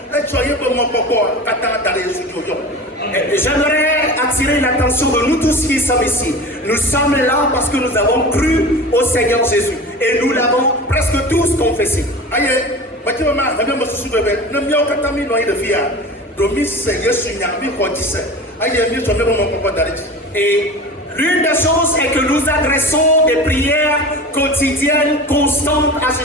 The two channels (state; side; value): normal; both; correlation 0.34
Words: J'aimerais attirer l'attention de nous tous qui sommes ici. Nous sommes là parce que nous avons cru au Seigneur Jésus et nous l'avons presque tous confessé. Et l'une des choses est que nous adressons des prières quotidiennes constantes à